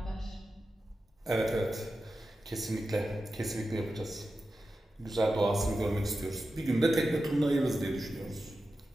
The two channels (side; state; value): both; normal; correlation 0.92